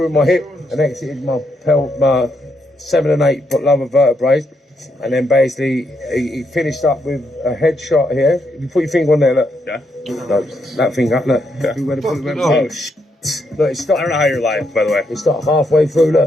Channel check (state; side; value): normal; both; correlation 0.78